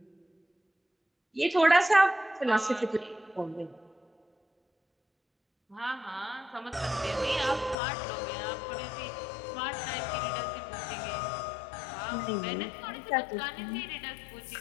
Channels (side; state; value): right; drops out; at 7.8 s